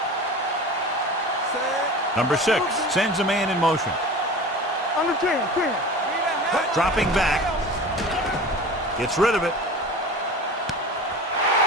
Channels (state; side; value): normal; both; correlation 0.36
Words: Number 6 sends a man in motion. Under 10. Dropping back. Gets rid of it.